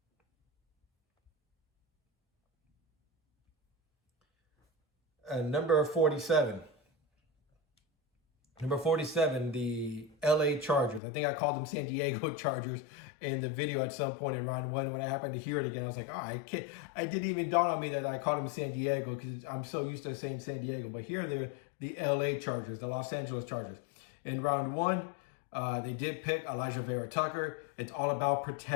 Number 47. Number 47, the LA Chargers. I think I called them San Diego Chargers in the video at some point in round 1. When I happened to hear it again, I was like, I didn't even dawn on me that I called them San Diego, because I'm so used to saying San Diego. But here they're the LA Chargers, the Los Angeles Chargers. In round 1, they did pick Elijah Vera Tucker. It's all about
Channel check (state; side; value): drops out; right; at 11.0 s